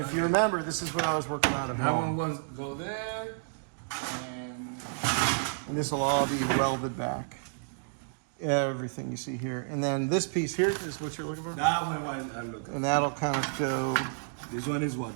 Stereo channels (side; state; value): left; silent; digital silence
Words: if you remember, this is what I was working on at That one home. was go there, and And this will all be welded back. Everything you see here. And then this piece here is what you're looking for? That one I'm looking. And that'll kind of go, This one is